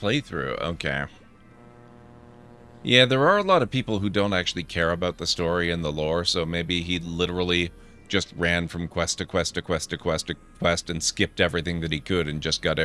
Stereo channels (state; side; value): identical; both; correlation 1.00